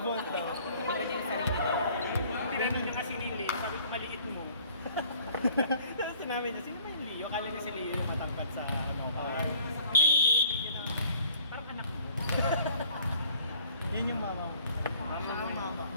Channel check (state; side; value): inverted; both; correlation -0.54